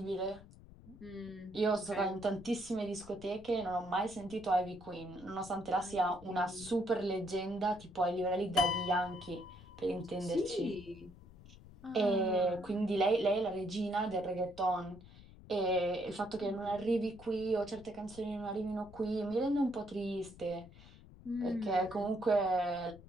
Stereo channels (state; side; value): noise; left; rumble, 19 dB below the sound